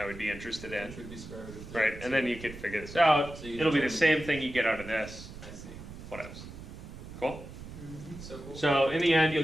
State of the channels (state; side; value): noise; right; rumble, 13 dB below the sound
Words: would be interested in. Which would be square root of 30. Right, and then you could figure this out. So you It'll be the determine- same thing you get out of this. I see. What else? Cool. So cool. So in the end, you'll